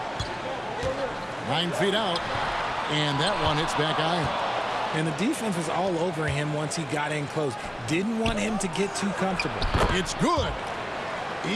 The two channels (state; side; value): identical; both; correlation 1.00